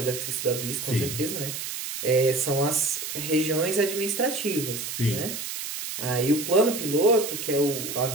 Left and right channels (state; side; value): noise; right; hiss, 6 dB below the sound